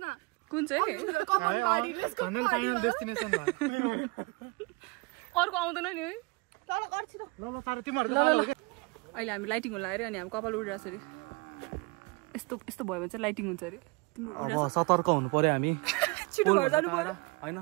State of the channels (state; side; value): quieter; left; 27.2 dB